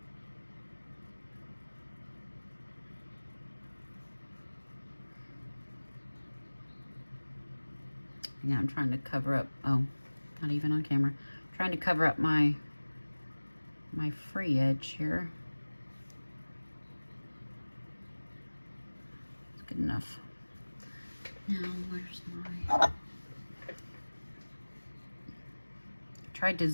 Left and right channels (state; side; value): inverted; both; correlation -1.00